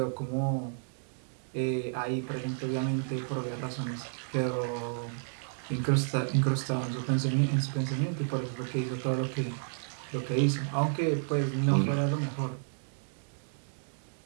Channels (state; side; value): silent; left; digital silence